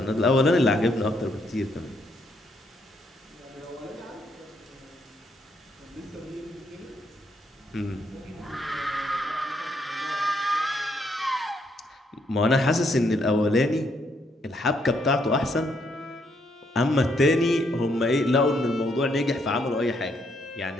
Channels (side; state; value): both; normal; correlation 0.73